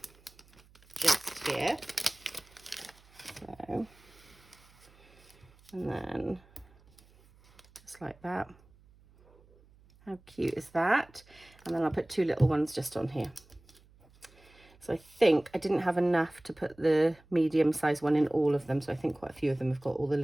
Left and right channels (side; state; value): right; noise; hum, 28 dB below the sound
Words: just here. So, and then just like that. How cute is that? And then I'll put two little ones just on here. So I think I didn't have enough to put the medium size one in all of them. So I think quite a few of them have got all the